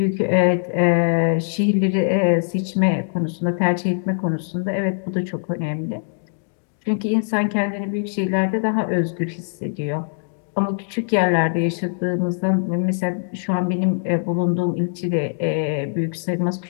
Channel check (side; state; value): right; silent; digital silence